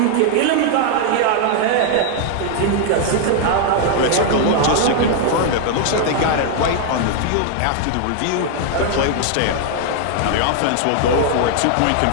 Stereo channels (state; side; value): different; both; correlation 0.00